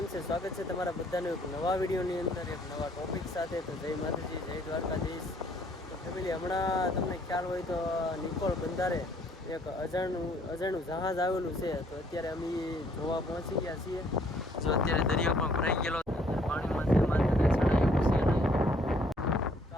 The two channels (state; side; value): normal; both; correlation 0.63